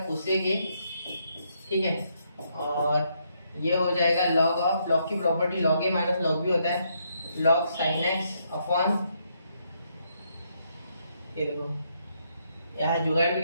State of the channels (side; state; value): both; inverted; correlation -0.75